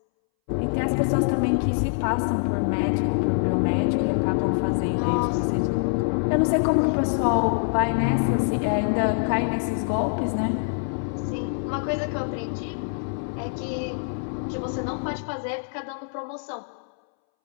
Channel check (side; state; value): right; silent; 62 dB below the other